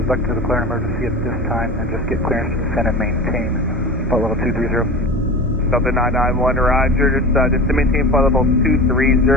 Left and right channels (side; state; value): both; normal; correlation 0.32